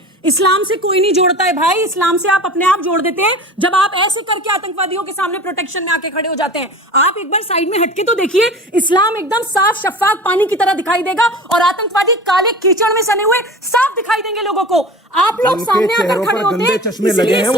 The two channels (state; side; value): normal; both; correlation 0.37